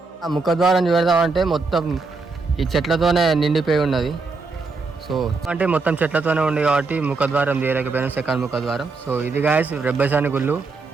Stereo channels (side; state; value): left; quieter; 4.1 dB